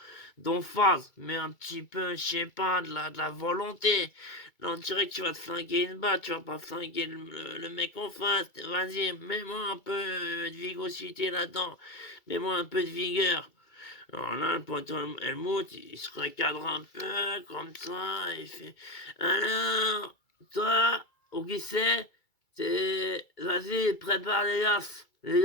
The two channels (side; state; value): right; late; 2.3 ms